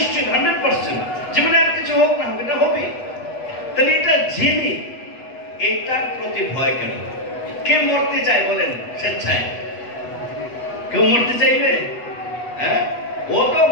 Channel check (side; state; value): right; late; 8.2 ms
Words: 100%। জীবনে আর কিছু হোক না হোক এটা হবে। তাহলে এটা জেনে এটার প্রতি ভয় কেন? কে মরতে চায় বলেন স্বেচ্ছায়? কেউ মরতে চাইবে? হ্যাঁ, ও তো